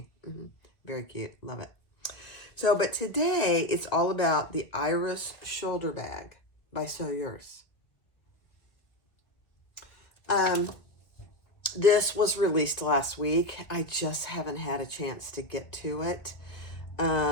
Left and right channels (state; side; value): late; right; 1.7 ms